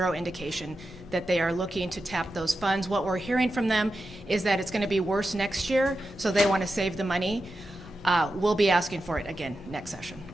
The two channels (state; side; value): normal; both; correlation 0.90